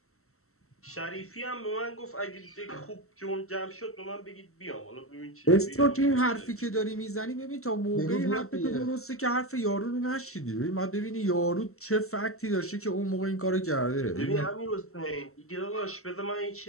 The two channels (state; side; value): late; right; 0.63 ms